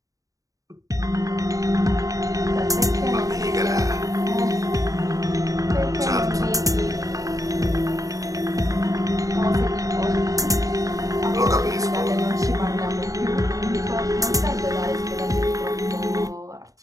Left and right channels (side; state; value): left; late; 0.16 ms